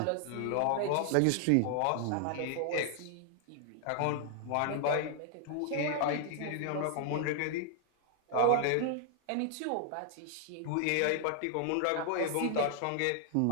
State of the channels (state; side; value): different; both; correlation 0.00